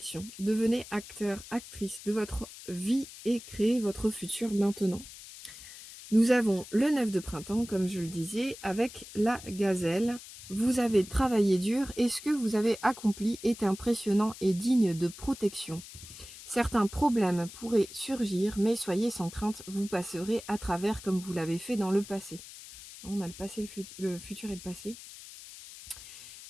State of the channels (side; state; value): left; noise; hiss, 15 dB below the sound